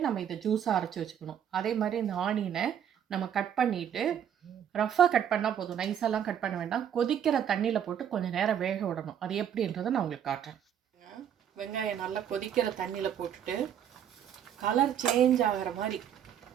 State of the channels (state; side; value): quieter; left; 9.2 dB